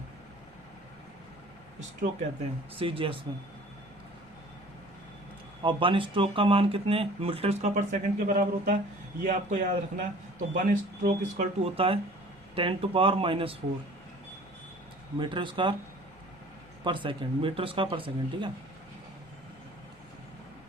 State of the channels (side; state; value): both; normal; correlation 0.48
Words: स्ट्रोक कहते हैं सी जी एस में। और 1 स्ट्रोक का मान कितने मीटर स्क्वायर पर सेकंड के बराबर होता है, ये आपको याद रखना है। तो 1 स्ट्रोक इक्वल टू होता है 10⁻⁻⁴ मीटर स्क्वायर पर सेकंड, मीटर स्क्वायर पर सेकंड। ठीक है,